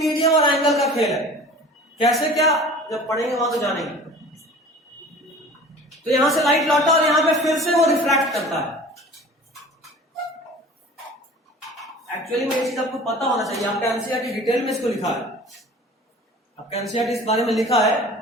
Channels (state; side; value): normal; both; correlation 0.43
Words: और एंगल का खेल है। कैसे क्या, जब पढ़ेंगे वहां तो जानेंगे। तो यहां से लाइट लौटा और यहां पे फिर से वो रिफ्रैक्ट करता है। एक्चुअली में ये चीज आपको पता होना चाहिए, आपका एनसीईआरटी डिटेल में इसको लिखा है। आपका एनसीईआरटी इस बारे में लिखा है